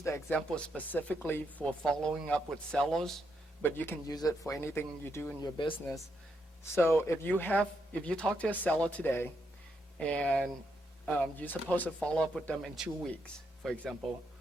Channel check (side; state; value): both; normal; correlation 0.79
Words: the example specifically for following up with sellers, but you can use it for anything you do in your business. So if you talk to a seller today, and you're supposed to follow up with them in 2 weeks, for example.